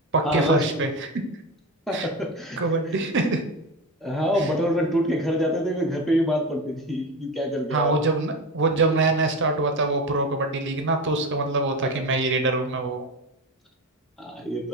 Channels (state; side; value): normal; both; correlation 0.23